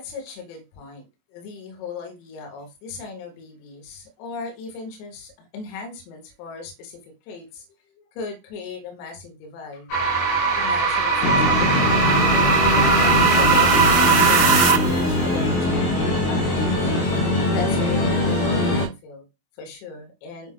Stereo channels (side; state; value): right; late; 23 ms